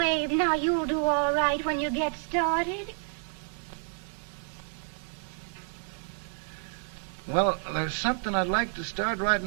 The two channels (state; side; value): silent; left; 58 dB below the other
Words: Abe, now you'll do all right when you get started. Well, there's something I'd like to start right